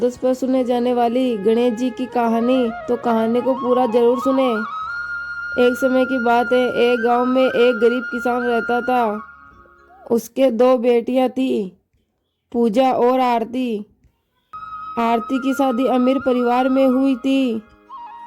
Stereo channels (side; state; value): both; identical; correlation 1.00